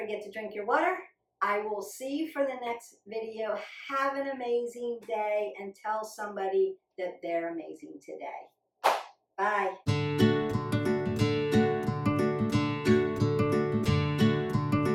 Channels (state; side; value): identical; both; correlation 1.00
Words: to drink your water. I will see you for the next video. Have an amazing day and tell somebody that they're amazing today. Bye.